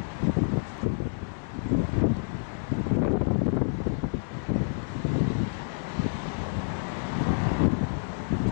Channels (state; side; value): silent; right; digital silence